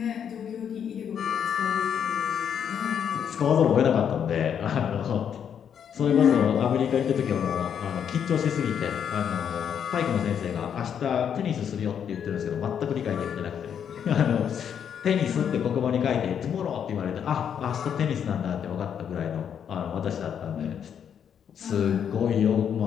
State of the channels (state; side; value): quieter; right; 8.3 dB